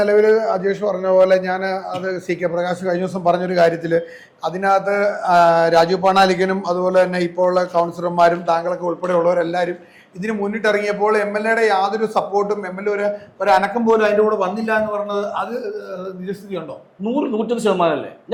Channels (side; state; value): both; identical; correlation 1.00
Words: അജേഷ് പറഞ്ഞ പോലെ ഞാൻ അത് CK പ്രകാശ് കഴിഞ്ഞ ദിവസം പറഞ്ഞൊരു കാര്യത്തില് അതിനകത്ത് രാജീവ് പണാലിക്കനും അതുപോലെ തന്നെ ഇപ്പോൾ ഉള്ള കൗൺസിലർമാരും താങ്കളൊക്കെ ഉൾപ്പെടെയുള്ളവരെല്ലാവരും ഇതിന് മുന്നിട്ടിറങ്ങിയപ്പോൾ MLA യാതൊരു സപ്പോർട്ടും ഒരു അനക്കം പോലും അതിന്റെ കൂടെ വന്നില്ല എന്ന് പറഞ്ഞത് അത് നിജസ്ഥിതി ഉണ്ടോ? 100%